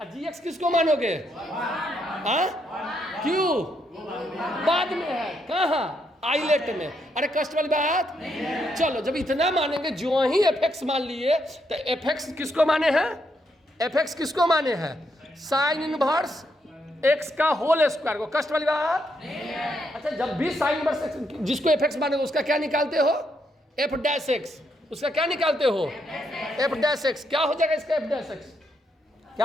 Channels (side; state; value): both; normal; correlation 0.77